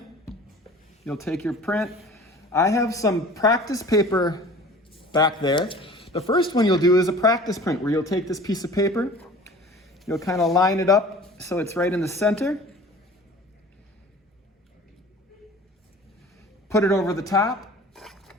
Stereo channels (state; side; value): normal; both; correlation 0.44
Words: you'll take your print. I have some practice paper back there. The first one you'll do is a practice print where you'll take this piece of paper, you'll kind of line it up so it's right in the center, put it over the top,